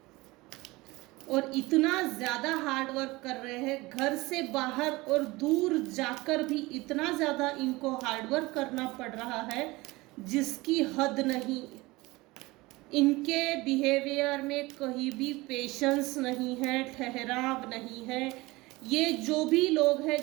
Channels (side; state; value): left; quieter; 21.5 dB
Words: और इतना ज़्यादा हार्ड वर्क कर रहे हैं, घर से बाहर और दूर जाकर भी इतना ज़्यादा इनको हार्ड वर्क करना पड़ रहा है जिसकी हद नहीं। इनके बिहेवियर में कहीं भी पेशेंस नहीं है, ठहराव नहीं है। ये जो भी लोग हैं